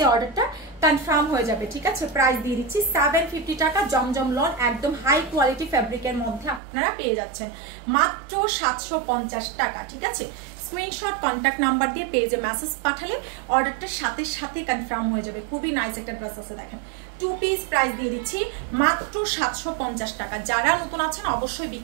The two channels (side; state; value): left; drops out; at 6.6 s